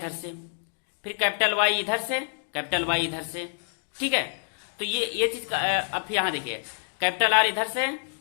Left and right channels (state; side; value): silent; right; digital silence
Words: से, फिर कैपिटल वाई इधर से, कैपिटल वाई इधर से। ठीक है, तो ये चीज अब यहां देखिए कैपिटल आर इधर से